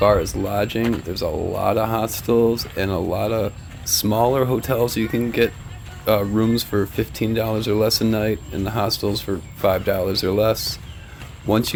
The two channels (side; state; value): both; identical; correlation 1.00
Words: as lodging, there's a lot of hostels and a lot of smaller hotels you can get rooms for $15 or less a night, and the hostels for $5 or less. Once